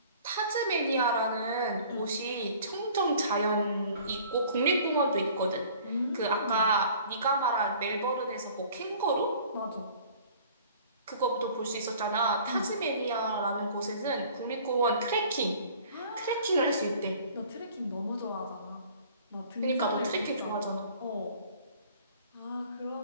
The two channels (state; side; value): inverted; both; correlation -0.50